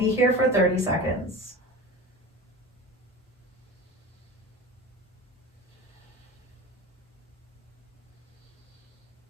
here for 30 seconds.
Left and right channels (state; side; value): normal; both; correlation 0.32